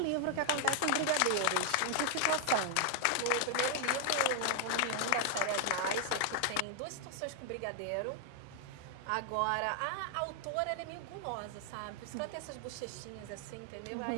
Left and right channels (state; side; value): different; both; correlation 0.00